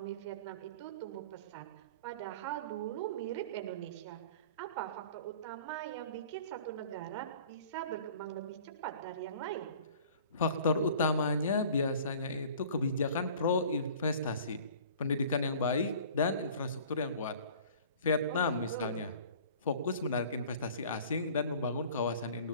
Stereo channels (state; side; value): inverted; both; correlation -0.47